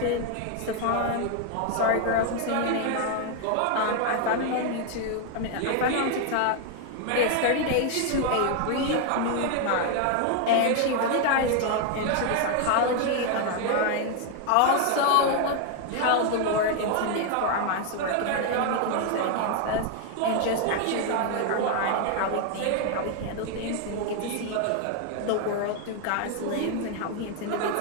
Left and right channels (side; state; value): both; different; correlation 0.00